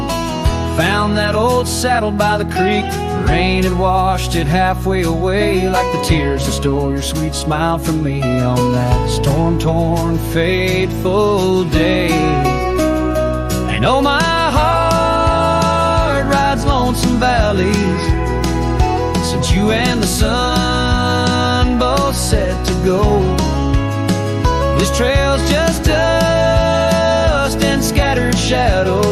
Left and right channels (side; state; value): both; identical; correlation 1.00